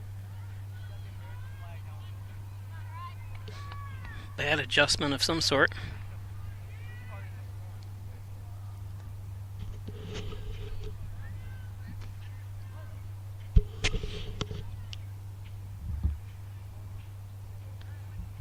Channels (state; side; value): identical; both; correlation 1.00